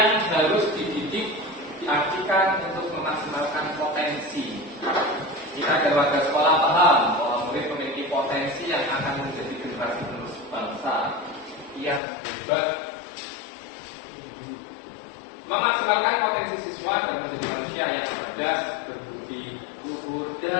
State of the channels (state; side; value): drops out; right; at 12.0 s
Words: harus dididik diartikan untuk memaksimalkan potensi. Kita dan warga sekolah paham bahwa murid memiliki potensi yang akan menjadi generasi penerus bangsa yang hebat. Memaksimalkan potensi siswa dan menjadi manusia yang cerdas, berbudi luhur